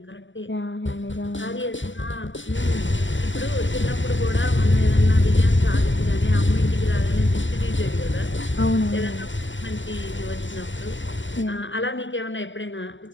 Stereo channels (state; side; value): late; right; 0.55 ms